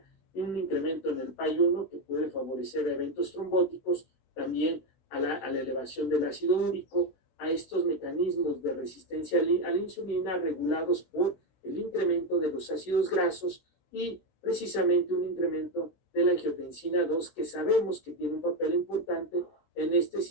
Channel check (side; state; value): right; late; 16 ms